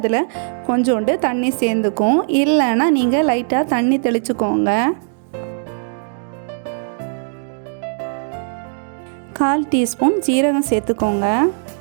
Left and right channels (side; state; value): left; silent; digital silence